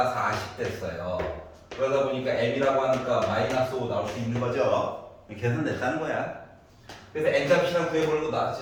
40 됐어요. 그러다 보니까 m이라고 하니까 마이너스 5 나올 수 있는 거죠. 계산됐다는 거야. 그래서 n값이랑 구해보려고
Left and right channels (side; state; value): both; identical; correlation 1.00